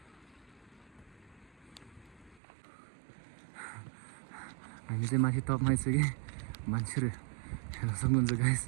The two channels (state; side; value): drops out; left; at 2.4 s